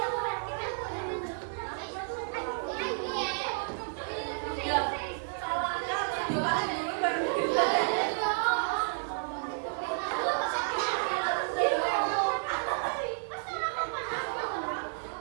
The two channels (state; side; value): silent; left; digital silence